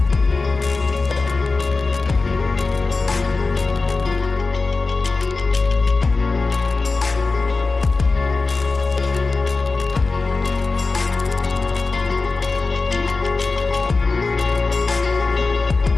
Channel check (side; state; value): right; quieter; 3.8 dB